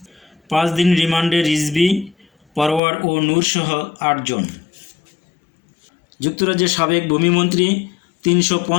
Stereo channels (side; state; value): right; drops out; at 2.8 s